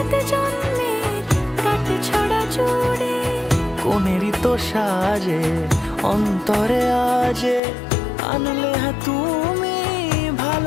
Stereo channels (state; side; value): drops out; right; at 7.6 s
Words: জন্মের কাট ছড়া জুড়ে। কোনেরই তো সাজে অন্তরে আজে আনলে হ্যাঁ তুমি